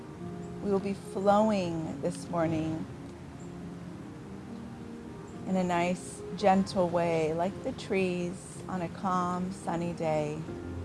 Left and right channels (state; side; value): identical; both; correlation 1.00